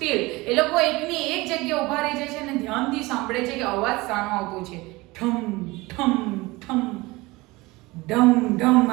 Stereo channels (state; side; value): quieter; left; 22.0 dB